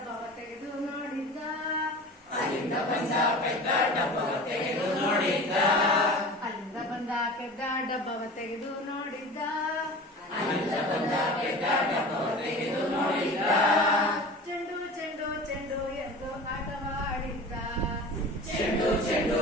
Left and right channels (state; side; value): normal; both; correlation 0.36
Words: ತೆಗೆದು ನೋಡಿದ್ದ. ಅಲ್ಲಿಂದ ಬಂದ ಪೆದ್ದ ಡಬ್ಬವ ತೆಗೆದು ನೋಡಿದ್ದ. ಅಲ್ಲಿಂದ ಬಂದ ಪೆದ್ದ ಡಬ್ಬವ ತೆಗೆದು ನೋಡಿದ್ದ. ಅಲ್ಲಿಂದ ಬಂದ ಪೆದ್ದ ಡಬ್ಬವ ತೆಗೆದು ನೋಡಿದ್ದ. ಚೆಂಡು ಚೆಂಡು ಚೆಂಡು ಎಂದು ಆಟವಾಡಿದ್ದ. ಚೆಂಡು ಚೆಂಡು